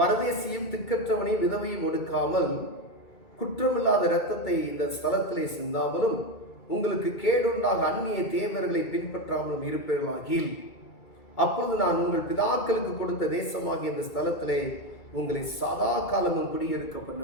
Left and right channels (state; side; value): late; right; 2.3 ms